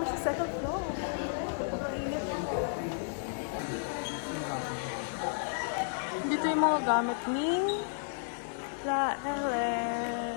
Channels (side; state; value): right; silent; digital silence